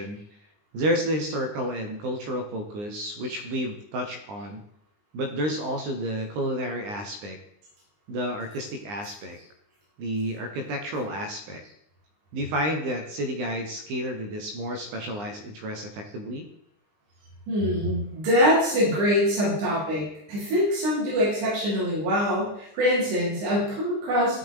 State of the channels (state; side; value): late; left; 19 ms